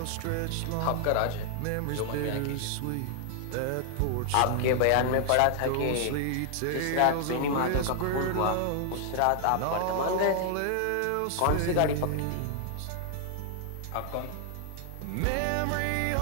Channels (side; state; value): both; different; correlation 0.00